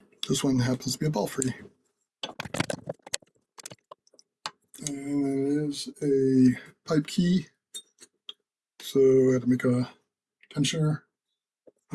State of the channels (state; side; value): identical; both; correlation 1.00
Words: This one happens to be a Belfry. And it is a pipe key. So I had to make a tensioner.